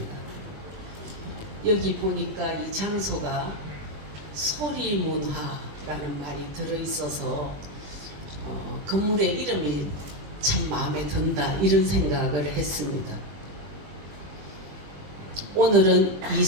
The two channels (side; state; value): left; late; 20 ms